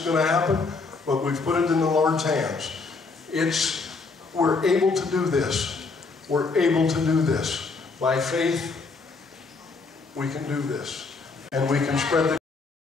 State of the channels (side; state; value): right; quieter; 4.2 dB